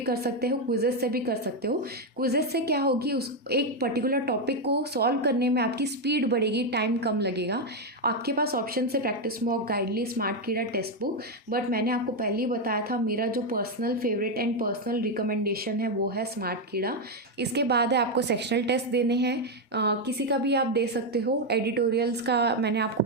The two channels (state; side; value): normal; both; correlation 0.04